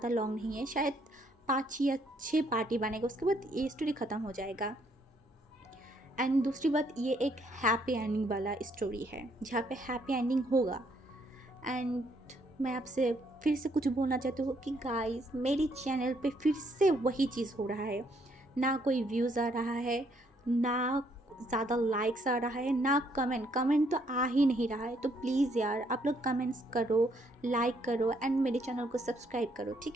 लॉन्ग नहीं है। शायद 5 या 6 पार्टी बनेगा, उसके बाद ये स्टोरी ख़त्म हो जाएगा। एंड दूसरी बात, ये एक हैप्पी एंडिंग वाला स्टोरी है जहाँ पे हैप्पी एंडिंग होगा। एंड मैं आपसे फिर से कुछ बोलना चाहती हूँ कि गाइस, मेरी चैनल पे फिर से वही चीज़ हो रहा है। ना कोई व्यूज़ आ रहा है, ना ज़्यादा लाइक्स आ रहा है, ना कमेंट तो आ ही नहीं रहा है। तो प्लीज़ यार, आप लोग कमेंट्स करो, लाइक करो एंड मेरे चैनल को सब्सक्राइब करो,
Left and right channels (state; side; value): normal; both; correlation 0.70